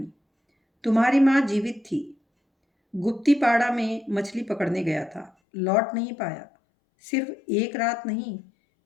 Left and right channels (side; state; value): right; drops out; at 5.3 s